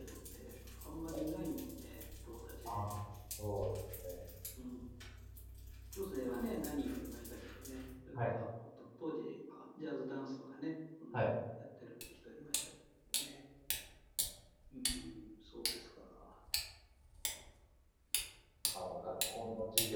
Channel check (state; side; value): identical; both; correlation 1.00